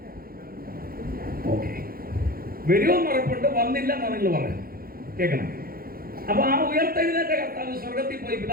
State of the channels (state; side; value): late; left; 0.43 ms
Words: ഓക്കെ, വരുമെന്ന് ഉറപ്പുണ്ട്. വന്നില്ല എന്നാ നിങ്ങൾ പറയാം, കേൾക്കണം. അപ്പൊ ആ ഉയർത്തെഴുന്നേറ്റ കർത്താവ് സ്വർഗത്തിൽ പോയി